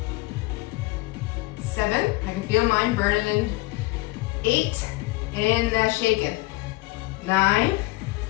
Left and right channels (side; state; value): right; quieter; 21.4 dB